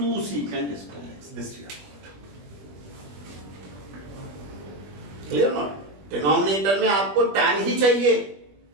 secant square x, this you have. Clear not? Denominator में आपको tan ही चाहिए,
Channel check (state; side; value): late; left; 20 ms